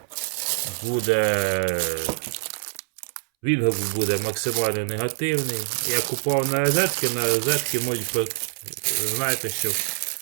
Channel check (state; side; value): silent; left; 62 dB below the other